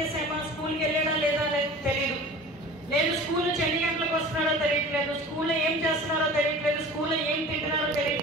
స్కూల్కి వెళ్ళాడా లేదా తెలియదు, లేదు స్కూల్ నుంచి ఎన్ని గంటలకు వస్తున్నారో తెలియట్లేదు, స్కూల్లో ఏం చేస్తున్నారో తెలియట్లేదు, స్కూల్లో ఏం తింటున్నారో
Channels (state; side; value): normal; both; correlation 0.40